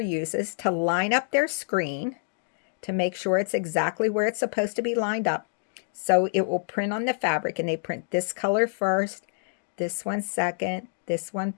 to line up their screen to make sure it's exactly where it's supposed to be lined up. So it will print on the fabric, and they print this color first, this one second, this one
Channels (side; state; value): right; silent; digital silence